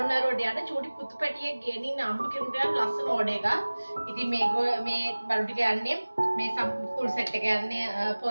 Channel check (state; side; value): inverted; both; correlation -1.00